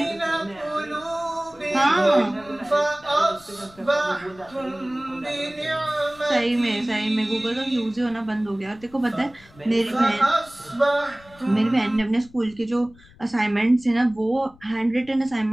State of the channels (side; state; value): left; noise; rumble, 25 dB below the sound